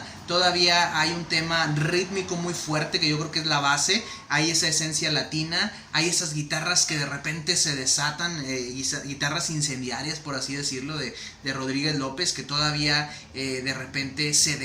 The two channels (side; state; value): both; identical; correlation 1.00